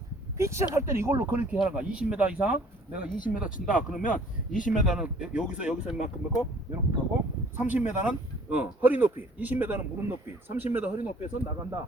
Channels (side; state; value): both; normal; correlation 0.55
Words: 피치샷 할 때는 이걸로 그렇게 하는 거야. 20m 이상 내가 20m 친다 그러면 20m는 여기서 이만큼 넣고 이렇게 하고 30m는 허리 높이, 20m는 무릎 높이, 30m 허리 높이에서 나간다